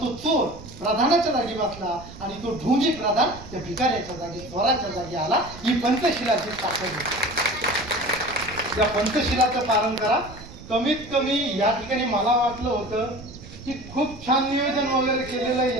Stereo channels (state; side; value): noise; right; rumble, 16 dB below the sound